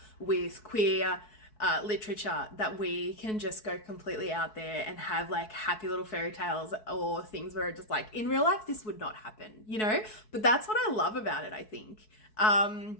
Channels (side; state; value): right; late; 4.6 ms